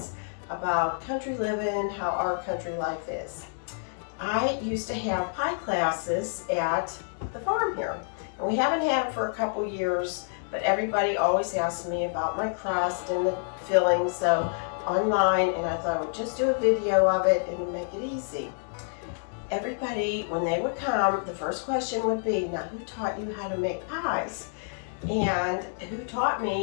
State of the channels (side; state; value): right; silent; digital silence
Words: about country living, how our country life is. I used to have pie classes at the farm here, and we haven't had them for a couple years, but everybody always asks me about my crust and the filling, so online, and I thought I would just do a video of it and make it easy. Everybody, when they would come, the first question would be, now who taught you how to make pies? And who taught